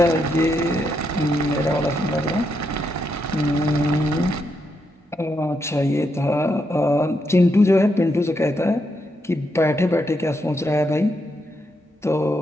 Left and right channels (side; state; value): both; normal; correlation 0.81